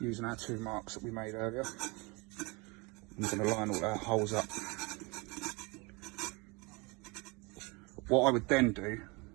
using our 2 marks that we made earlier. I'm going to line all our holes up. What I would then do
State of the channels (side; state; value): left; quieter; 27.9 dB